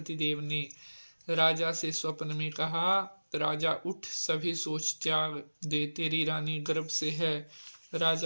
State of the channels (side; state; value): both; inverted; correlation -1.00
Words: देव ने राजा से स्वप्न में कहा, राजा उठ, सभी सोच त्याग दे, तेरी रानी गर्भ से है।